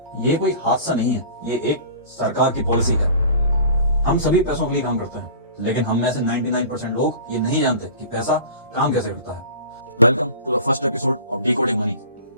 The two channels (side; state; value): both; inverted; correlation -0.40